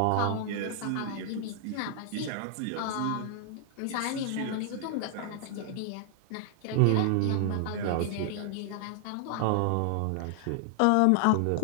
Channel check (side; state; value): both; different; correlation 0.00